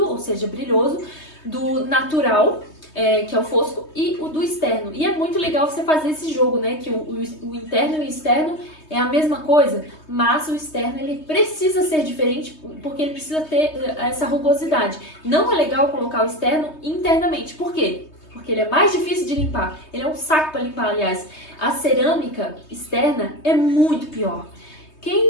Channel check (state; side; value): late; right; 3.2 ms